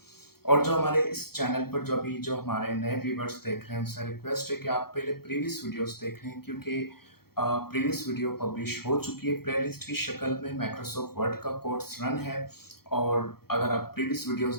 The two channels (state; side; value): late; right; 0.94 ms